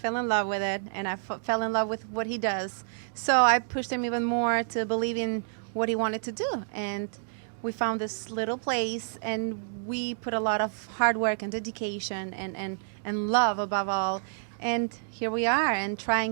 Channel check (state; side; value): silent; left; digital silence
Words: in love with it, and I fell in love with what he does. So I pushed him even more to believe in what he wanted to do. And we found this little place, and we put a lot of hard work and dedication and love above all. And here we are, and